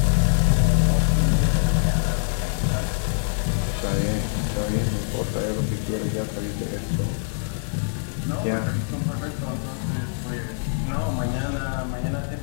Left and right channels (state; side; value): silent; right; digital silence